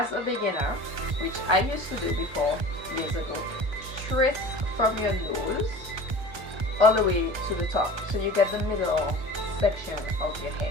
a beginner, which I used to do before years ago, trace from your nose all the way to the top, so you get the middle section of your head.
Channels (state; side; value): late; left; 1.2 ms